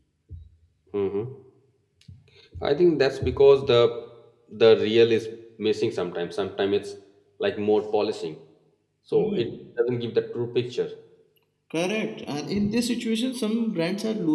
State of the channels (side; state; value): both; identical; correlation 1.00